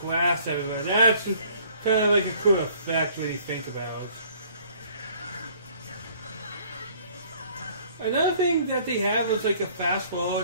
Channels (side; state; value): both; inverted; correlation -0.57